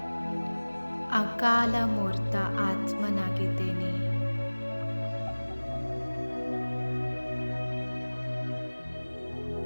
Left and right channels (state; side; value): inverted; both; correlation -1.00